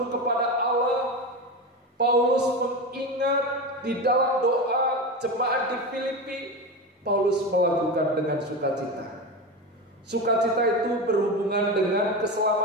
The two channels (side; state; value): both; normal; correlation 0.21